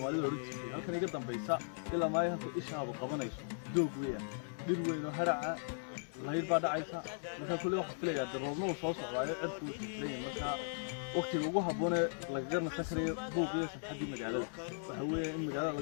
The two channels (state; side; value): silent; right; digital silence